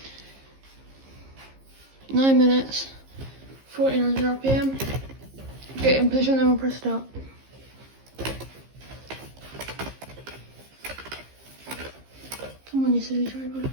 nine minutes, 1400 RPM. Get in position and we'll press start. Come on, you silly tripod.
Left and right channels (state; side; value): late; left; 15 ms